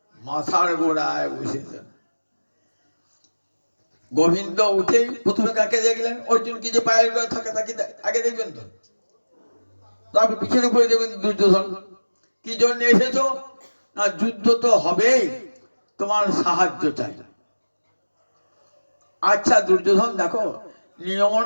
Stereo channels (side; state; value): both; inverted; correlation -1.00